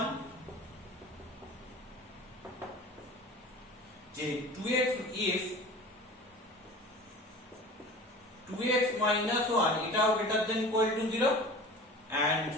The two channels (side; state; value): both; normal; correlation 0.39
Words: যে 2x if 2x - 1 এটাও greater than equal to 0 and